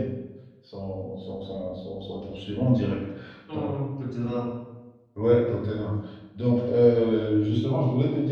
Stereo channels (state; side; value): identical; both; correlation 1.00